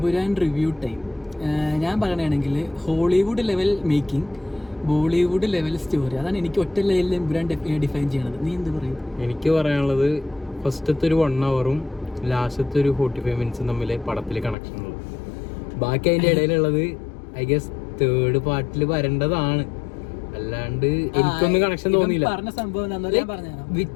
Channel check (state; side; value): drops out; right; at 14.6 s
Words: review time. ഞാൻ പറയണമെങ്കിൽ Hollywood level making, Bollywood level story, അതാണ് എനിക്ക് ഒറ്റ ലെവലിൽ എമ്പുരാൻ ഡിഫൈൻ ചെയ്യണത്. നീ എന്ത് പറയും? എനിക്ക് പറയാനുള്ളത് ഫസ്റ്റത്തെ ഒരു 1 hour ലാസ്റ്റത്തെ ഒരു 45 minutes തമ്മിൽ പടത്തിൽ കണക്ഷൻ ഉള്ളു. ബാക്കി അതിൻ്റെ ഇടയിലുള്ളത് ഐ ഗസ് തേർഡ് പാർട്ടിൽ വരേണ്ടതാണ്. അല്ലാണ്ട് എനിക്കൊന്നും കണക്ഷൻ തോന്നിയില്ല. പറഞ്ഞ സംഭവം